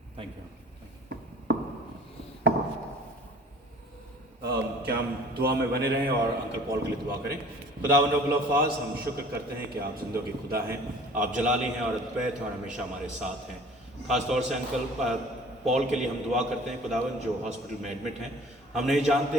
Thank you. क्या हम दुआ में बने रहें और अंकल पॉल के लिए दुआ करें। खुदावंद रब्बुल अल्फाज, हम शुक्र करते हैं कि आप ज़िंदगी खुदा हैं, आप जलाली हैं और अद्वैत हैं और हमेशा हमारे साथ हैं। ख़ास तौर से अंकल पॉल के लिए हम दुआ करते हैं खुदावंद, जो हॉस्पिटल में एडमिट हैं। हम नहीं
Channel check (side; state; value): both; normal; correlation 0.48